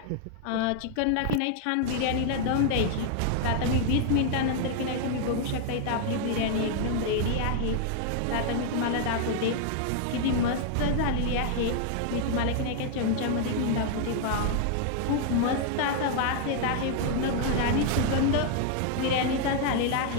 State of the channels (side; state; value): both; different; correlation 0.00